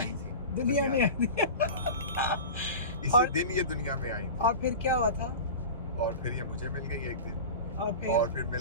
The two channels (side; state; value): both; inverted; correlation -0.31